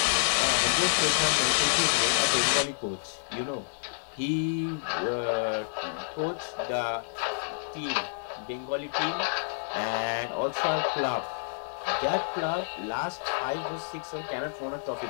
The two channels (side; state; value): right; silent; digital silence